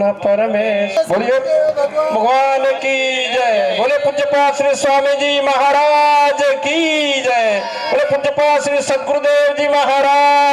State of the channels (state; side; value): identical; both; correlation 1.00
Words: परमेश्वर। बोलिए भगवान की जय। बोले पूज्यपाद श्री स्वामी जी महाराज की जय। बोले पूज्यपाद श्री सद्गुरुदेव जी